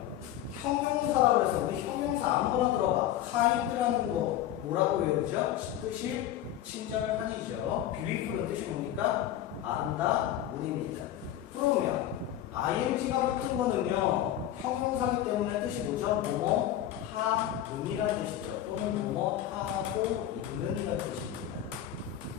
형용사라고 해서 우리 형용사 아무거나 들어봐. kind라는 거 뭐라고 외우죠? 뜻이 친절한이죠. beautiful은 뜻이 뭡니까? 아름다운입니다. 그러면 ing가 붙은 거는요. 형용사기 때문에 뜻이 뭐죠? 뭐뭐 하는이라는 뜻이죠. 또는 뭐뭐 하고 있는이라는 뜻입니다.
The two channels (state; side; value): quieter; right; 12.0 dB